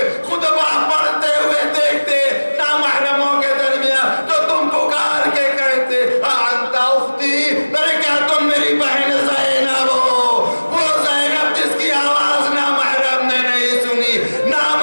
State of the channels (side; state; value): both; inverted; correlation -1.00